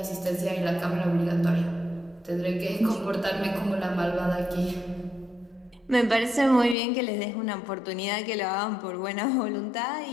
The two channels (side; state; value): right; drops out; at 6.8 s